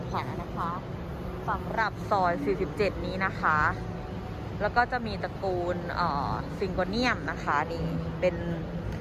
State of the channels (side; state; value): both; identical; correlation 1.00